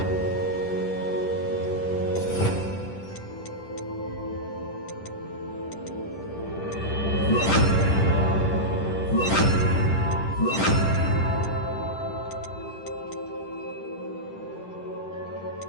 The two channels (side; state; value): right; late; 10 ms